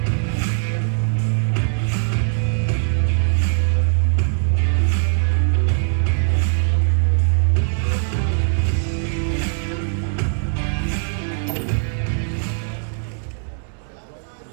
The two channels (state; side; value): silent; left; 65 dB below the other